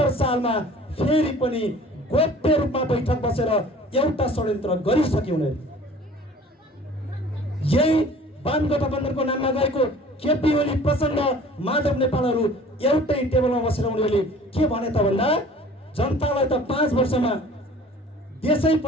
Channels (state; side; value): normal; both; correlation 0.48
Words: सालमा फेरि पनि गोप्य रूपमा बैठक बसेर एउटा षड्यन्त्र गरिसके उनीहरू। यही वाम गठबन्धनको नाममा गएको केपी ओली, प्रचण्ड, माधव नेपालहरू एउटै टेबलमा बसेर उनीहरूले के भने त भन्दा जनतालाई त 5 वर्षमा देशै